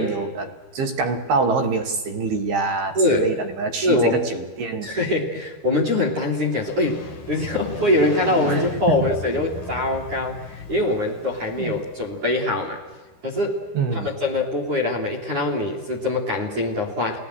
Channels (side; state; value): left; late; 13 ms